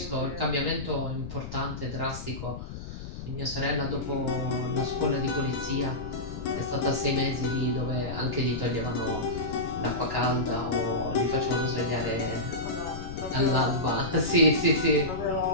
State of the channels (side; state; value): left; noise; rumble, 9 dB below the sound